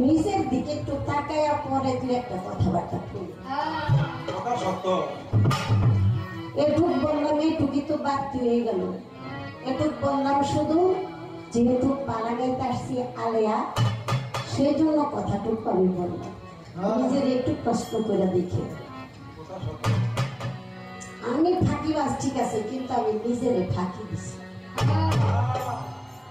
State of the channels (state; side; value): identical; both; correlation 1.00